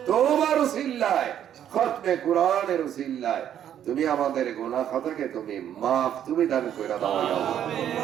তওবার উসিলায় খতমে কোরআনের উসিলায় তুমি আমাদের গুনাহ খাতাকে তুমি maaf তুমি দান করে দাও ইয়া আল্লাহ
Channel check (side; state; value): left; quieter; 10.1 dB